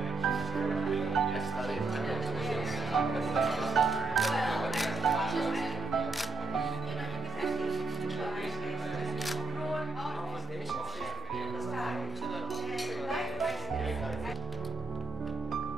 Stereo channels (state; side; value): quieter; left; 3.7 dB